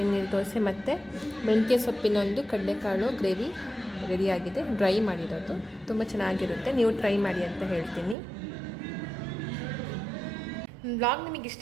ನೀರು ದೋಸೆ ಮತ್ತು ಮೆಂತ್ಯ ಸೊಪ್ಪಿನ ಒಂದು ಕಡಲೆಕಾಳು ಗ್ರೇವಿ ರೆಡಿಯಾಗಿದೆ. ಡ್ರೈ ಮಾಡಿರೋದು ತುಂಬ ಚೆನ್ನಾಗಿರುತ್ತೆ, ನೀವು ಟ್ರೈ ಮಾಡಿ ಅಂತ ಹೇಳ್ತೀನಿ. ಬ್ಲಾಗ್ ನಿಮಗೆ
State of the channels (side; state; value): left; drops out; at 8.2 s